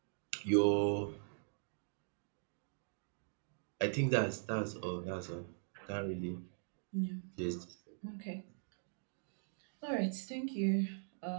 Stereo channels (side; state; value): left; silent; digital silence